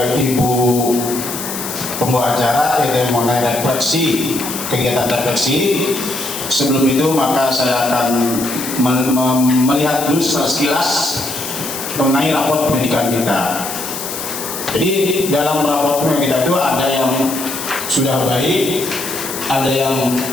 Ibu pembawa acara, yaitu mengenai refleksi, kegiatan refleksi. Sebelum itu maka saya akan melihat dulu sekilas mengenai raport pendidikan kita. Jadi dalam raport pendidikan kita itu ada yang sudah baik, ada yang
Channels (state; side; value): noise; left; hiss, 7 dB below the sound